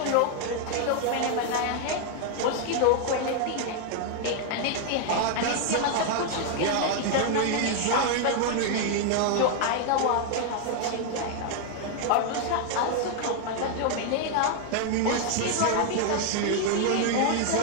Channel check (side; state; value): both; different; correlation 0.00